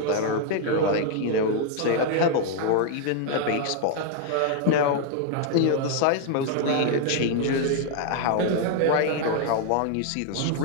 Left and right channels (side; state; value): both; different; correlation 0.00